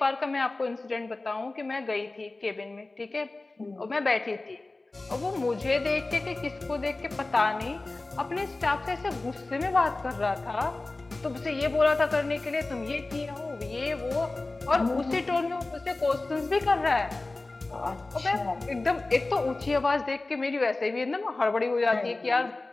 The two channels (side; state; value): right; quieter; 3.2 dB